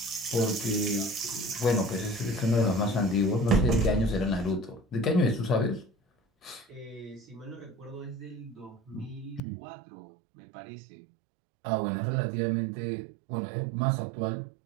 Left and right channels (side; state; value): left; drops out; at 9.4 s